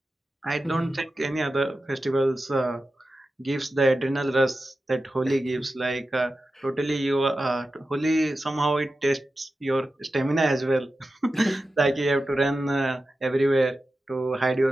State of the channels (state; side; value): normal; both; correlation 0.93